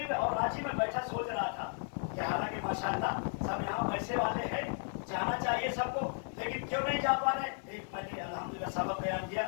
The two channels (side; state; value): right; silent; 55 dB below the other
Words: में, और आज ही मैं बैठा सोच रहा था कि हालांकि माशाल्लाह सब यहाँ पैसे वाले हैं, जाना चाहिए सबको, लेकिन क्यों नहीं जा पा रहे। एक मैंने अल्हम्दुलिल्लाह सबक बयान किया,